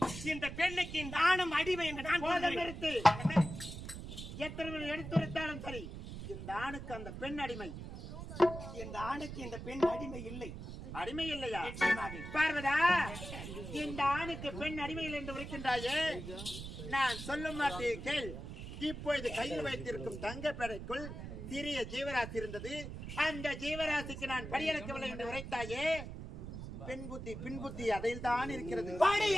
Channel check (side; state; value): right; noise; rumble, 9 dB below the sound